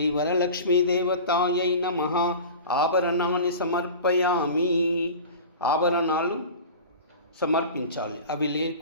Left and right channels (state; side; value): inverted; both; correlation -0.36